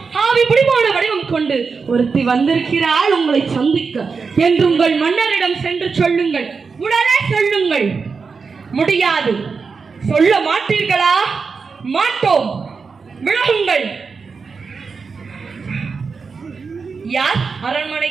ஆவி பிடிமான வடிவம் கொண்டு ஒருத்தி வந்திருக்கிறாள் உங்களை சந்திக்க என்று உங்கள் மன்னரிடம் சென்று சொல்லுங்கள். உடனே சொல்லுங்கள். முடியாது. சொல்ல மாட்டீர்களா? மாட்டோம். விலகுங்கள். யார் அரண்மனை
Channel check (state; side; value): quieter; left; 5.0 dB